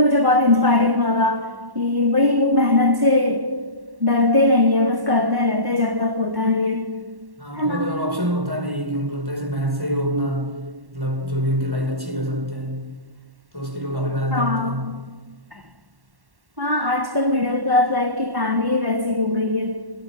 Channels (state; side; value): late; left; 1.1 ms